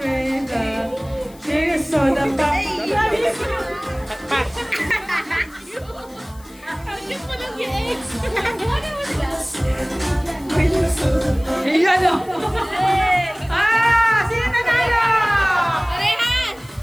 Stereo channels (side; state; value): left; noise; hiss, 25 dB below the sound